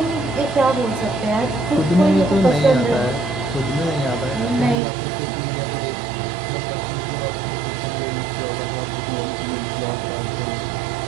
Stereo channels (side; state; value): left; drops out; at 4.8 s